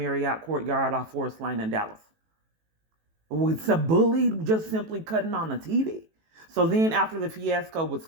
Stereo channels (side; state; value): left; late; 18 ms